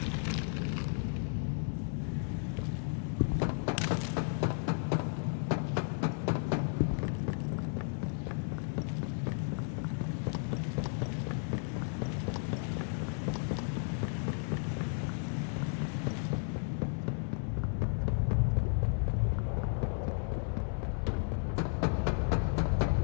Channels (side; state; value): right; silent; 55 dB below the other